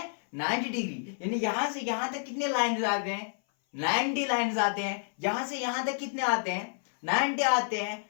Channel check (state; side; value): silent; right; 58 dB below the other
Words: 90 डिग्री, यानी यहां से यहां तक कितने लाइन्स आते हैं 90 लाइन्स आते हैं, यहां से यहां तक कितने आते हैं 90 आते हैं।